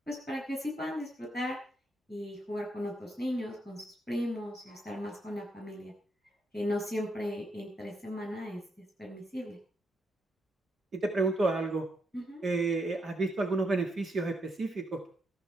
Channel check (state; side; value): normal; both; correlation 0.79